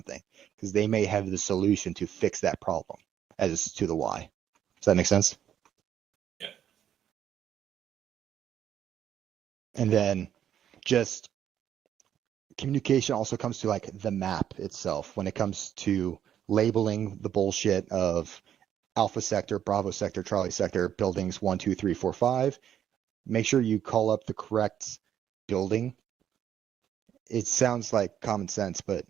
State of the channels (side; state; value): left; quieter; 10.0 dB